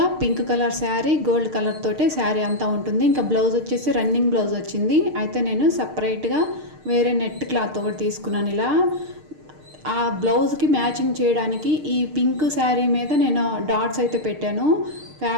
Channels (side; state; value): left; late; 6.6 ms